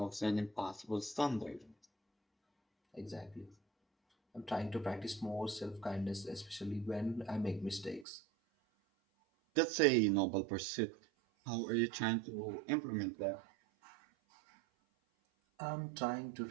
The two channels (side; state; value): left; drops out; at 8.1 s